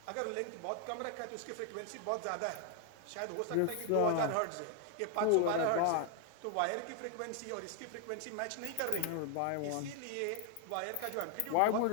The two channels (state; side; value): different; both; correlation 0.00